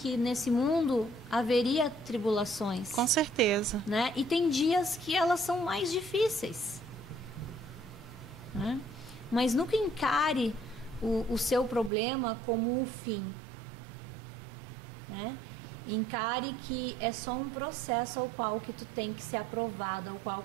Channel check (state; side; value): drops out; left; at 11.9 s